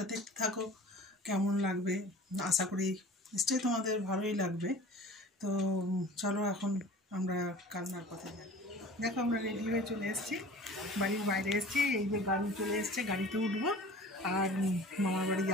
দেখতে থাকো, কেমন লাগবে আশা করি নিশ্চয়ই তোমাদের ভালোই লাগবে। তো চলো এখন আমরা কালনার পথে যাই। দেখো আমরা রেডি হয়ে চলে এসেছি, বাড়ির বাইরে এসেছি, এই যে গাড়ি চলে এসছে, গাড়িতে উঠবো আর মামার বাড়ি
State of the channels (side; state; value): both; normal; correlation 0.43